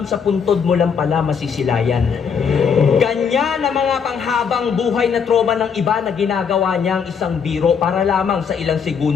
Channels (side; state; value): right; quieter; 6.5 dB